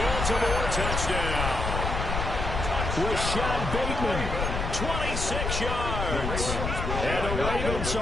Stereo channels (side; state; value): left; noise; rumble, 2 dB below the sound